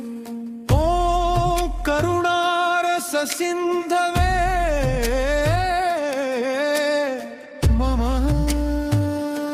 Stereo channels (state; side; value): identical; both; correlation 1.00